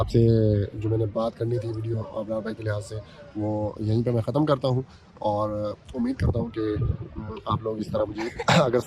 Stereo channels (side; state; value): both; identical; correlation 1.00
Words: जो मैंने बात करनी थी वीडियो अब्रार भाई के लिहाज से, वो यहीं पे मैं ख़त्म करता हूँ और उम्मीद करता हूँ कि आप लोग इस तरह मुझे अगर